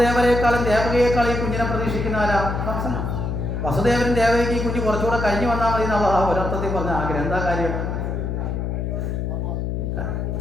ദേവകിയേക്കാളും ഈ കുഞ്ഞിനെ പ്രതീക്ഷിക്കുന്ന ആരാ? കംസനാണ്. വസുദേവനും ദേവകിക്ക് ഈ കുഞ്ഞ് കുറച്ചുകൂടെ കഴിഞ്ഞ് വന്നാൽ മതി എന്നാ ഒരർത്ഥത്തിൽ പറഞ്ഞ ആഗ്രഹം. എന്താ കാര്യം?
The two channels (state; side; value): noise; left; hum, 2 dB below the sound